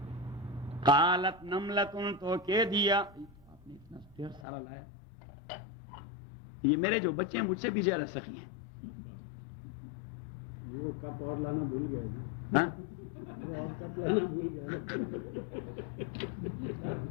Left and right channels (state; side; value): drops out; right; at 4.5 s